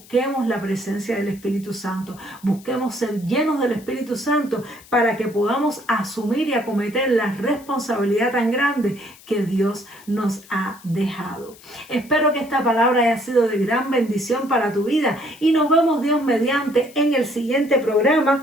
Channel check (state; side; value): noise; left; hiss, 23 dB below the sound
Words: la presencia del Espíritu Santo, busquemos ser llenos del Espíritu Santo para que podamos asumir y acometer la responsabilidad tan grande que Dios nos ha dejado. Espero que esta palabra haya sido de gran bendición para tu vida y nos vemos Dios mediante en el siguiente